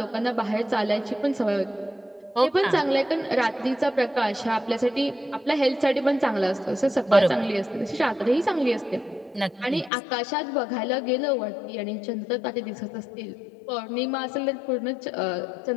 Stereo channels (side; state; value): right; drops out; at 9.9 s